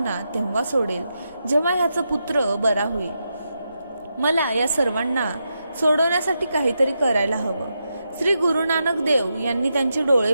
तेव्हा सोडेल जेव्हा ह्याचा पुत्र बरा होईल. मला या सर्वांना सोडवण्यासाठी काहीतरी करायला हवं. श्री गुरु नानक देव यांनी त्यांचे डोळे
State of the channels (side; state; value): both; inverted; correlation -0.85